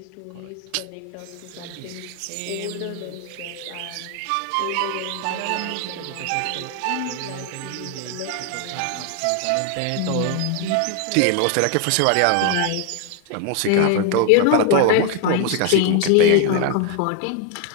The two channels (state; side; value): different; both; correlation 0.01